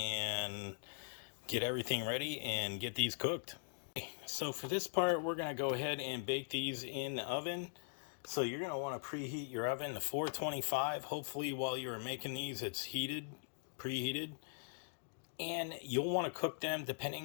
get everything ready and get these cooked. So for this part, we're going to go ahead and bake these in the oven. So you're going to want to preheat your oven to 425. Hopefully while you're making these, it's preheated. And you'll want to cook them,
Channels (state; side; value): silent; right; digital silence